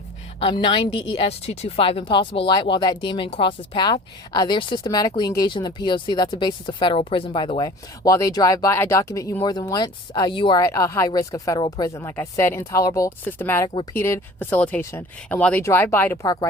9 DES 225, impossible light. While that demon crosses path, they're systematically engaged in the P.O.C. That's a basis of federal prison, by the way. While they drive by, I document you more than once. You are at a high risk of federal prison. Like I said, intolerable, systematic, repeated facilitation. And while they drive by to park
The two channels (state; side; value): normal; both; correlation 0.44